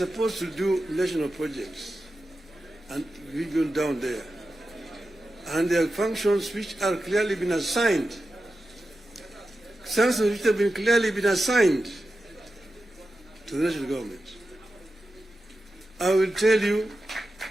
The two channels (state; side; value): normal; both; correlation 0.92